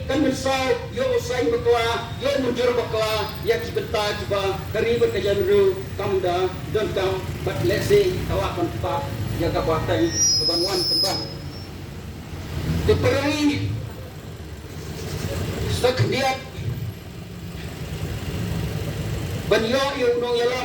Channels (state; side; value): identical; both; correlation 1.00